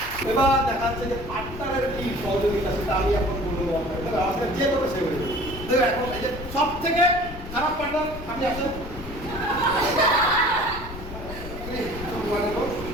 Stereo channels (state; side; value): noise; left; rumble, 11 dB below the sound